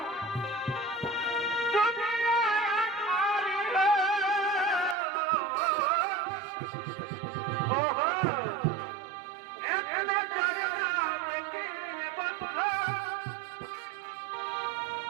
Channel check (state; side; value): drops out; left; at 5.0 s